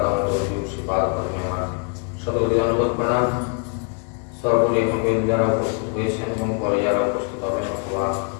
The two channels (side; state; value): right; quieter; 37.8 dB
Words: दामोदर देव श्रीपाद शतकोटि धन्यवाद प्रणाम। सर्वरी যারা উপস্থিত হয়েছেন এবং পরে যারা উপস্থিত হবেন অথবা